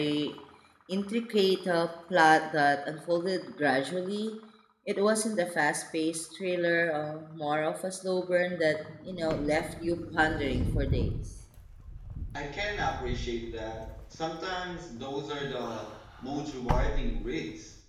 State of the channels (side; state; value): both; identical; correlation 1.00